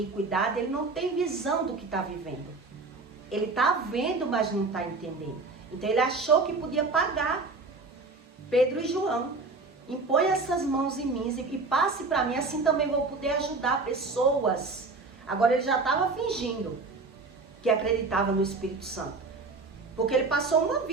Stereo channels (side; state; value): left; quieter; 3.8 dB